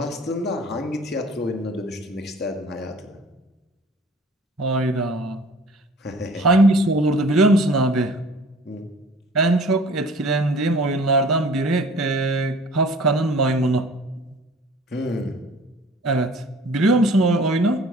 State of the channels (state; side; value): normal; both; correlation 0.48